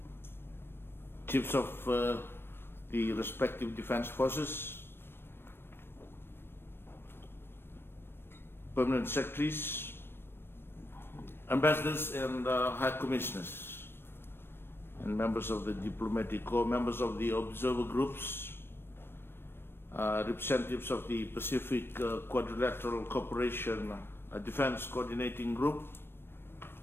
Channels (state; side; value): late; right; 0.11 ms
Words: Chiefs of the respective defense forces, Permanent Secretaries, Ambassadors and High Commissioners, and members of the Diplomatic Corps, members of the observer groups, representatives of the Pacific Quadrilateral Cooperation Defense Coordinating Group,